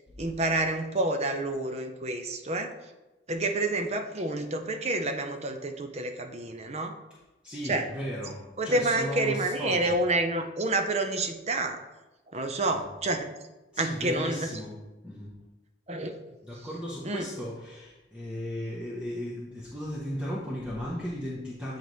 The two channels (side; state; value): both; normal; correlation 0.18